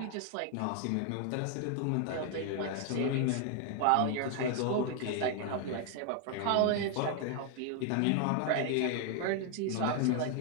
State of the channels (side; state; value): both; different; correlation 0.00